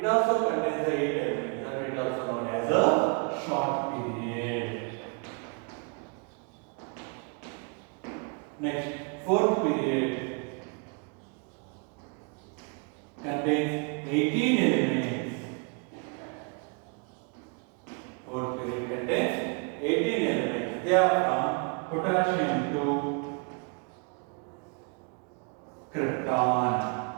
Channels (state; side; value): quieter; left; 35.1 dB